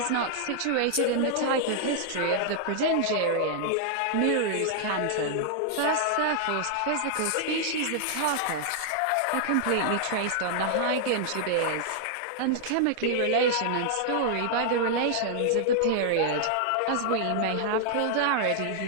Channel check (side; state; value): both; different; correlation -0.01